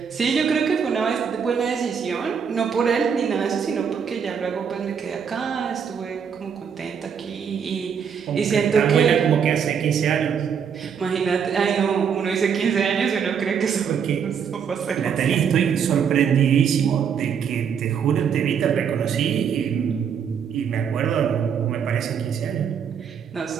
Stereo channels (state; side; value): quieter; left; 7.2 dB